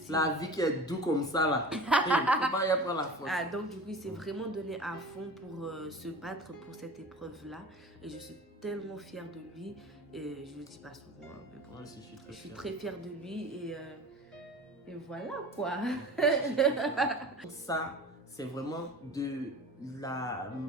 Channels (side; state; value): both; normal; correlation 0.37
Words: La vie qui est douce comme ça, là. Il ne faut pas y avoir la force. Donc, du coup, il s'est vraiment donné à fond pour se battre pour cette épreuve-là. Et je suis tellement fière de lui. Et je ne le dis pas souvent, hein, mais bon, je suis très fière de lui. Et voilà, quoi. Ça, c'est vraiment du